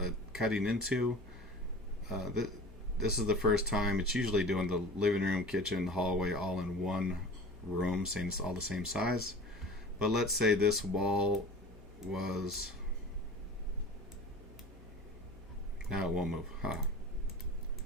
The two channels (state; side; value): normal; both; correlation 0.39